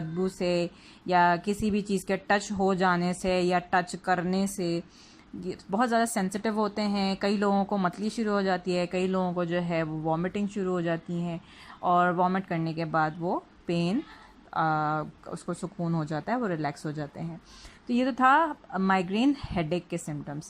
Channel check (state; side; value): identical; both; correlation 1.00